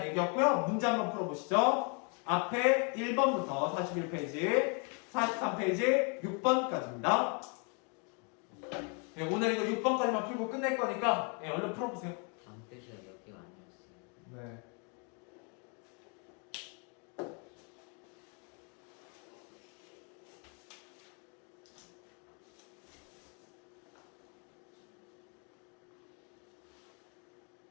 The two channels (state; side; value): quieter; right; 36.8 dB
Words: 얘기였고요. 문제 한번 풀어보시죠. 앞에 1번부터 41페이지, 43페이지, 6번까지입니다. 오늘 이거 6번까지만 풀고 끝낼 거니까 얼른 풀어보세요. 다음 페이지가 몇 개가 아니었어요. 네.